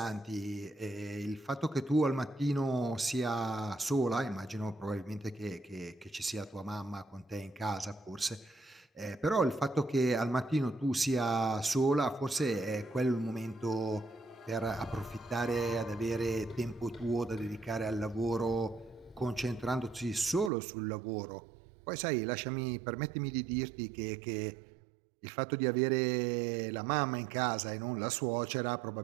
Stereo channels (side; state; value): left; drops out; at 20.5 s